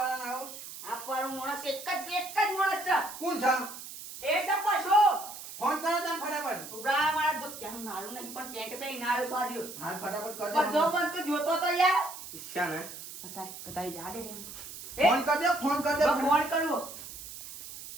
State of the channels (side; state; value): right; noise; hiss, 12 dB below the sound